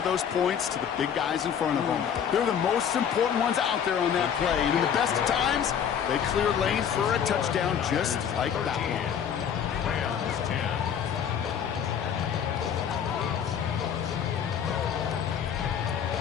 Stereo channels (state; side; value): quieter; right; 8.2 dB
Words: those points to the big guys in front of them. They're the most important ones out there on that play, and in the best of times, they clear lanes for a touchdown just like that one. Rams 10.